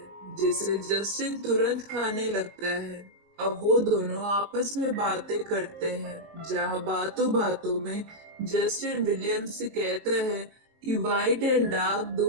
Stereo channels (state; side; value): late; left; 19 ms